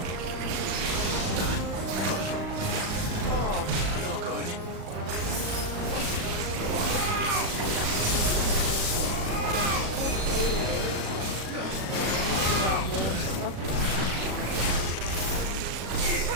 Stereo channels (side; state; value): left; late; 37 ms